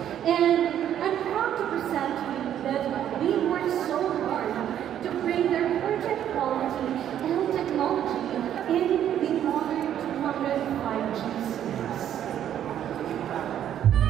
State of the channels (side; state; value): left; quieter; 10.4 dB